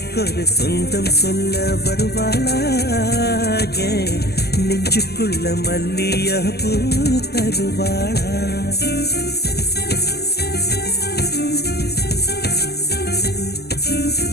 ஒரு சொந்தம் சொல்ல வருவாளா? நெஞ்சுக்குள்ள மல்லியா பூ தருவாளா?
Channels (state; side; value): late; right; 0.47 ms